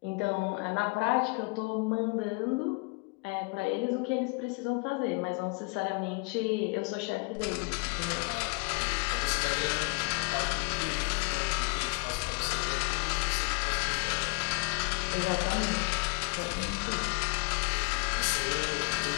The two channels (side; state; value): right; quieter; 31.6 dB